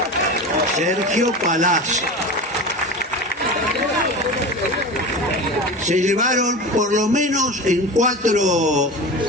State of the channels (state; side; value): normal; both; correlation 0.29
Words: Sergio Palazzo. Se llevaron por lo menos en 4